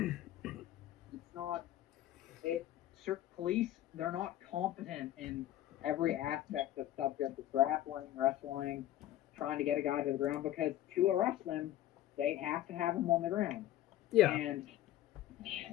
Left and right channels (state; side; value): quieter; right; 13.4 dB